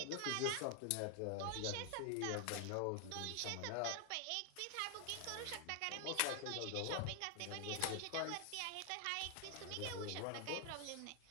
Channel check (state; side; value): different; both; correlation 0.00